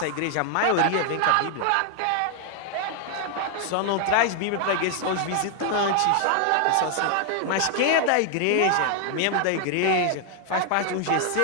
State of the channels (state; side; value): different; both; correlation 0.00